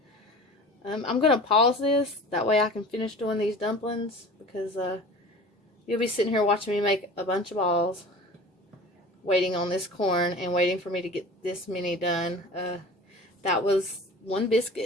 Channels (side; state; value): both; normal; correlation 0.39